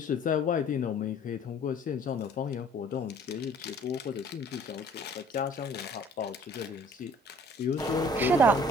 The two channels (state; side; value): normal; both; correlation 0.54